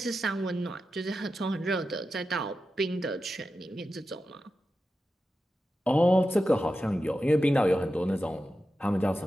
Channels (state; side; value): normal; both; correlation 0.91